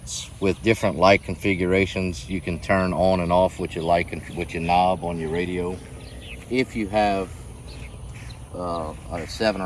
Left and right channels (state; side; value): identical; both; correlation 1.00